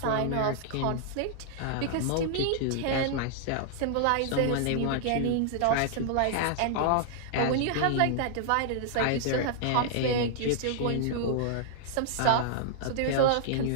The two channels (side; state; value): both; different; correlation -0.01